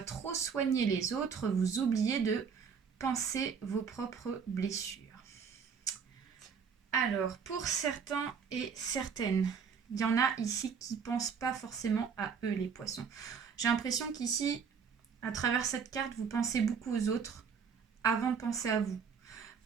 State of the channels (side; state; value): left; quieter; 6.4 dB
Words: trop soigner les autres, vous oubliez de penser vos propres blessures. Alors, pour certains et certaines, il y en a ici qui ne pensent pas forcément à eux, les poissons. J'ai l'impression qu'ici, à travers cette carte, vous pensez beaucoup aux autres avant de penser à vous.